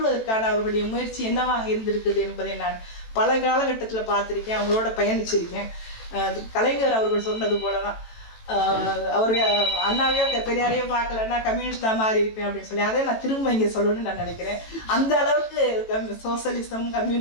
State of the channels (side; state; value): right; late; 18 ms